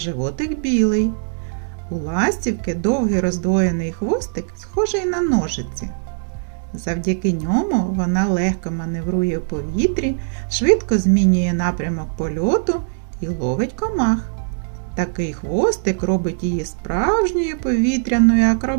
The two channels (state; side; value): silent; left; 65 dB below the other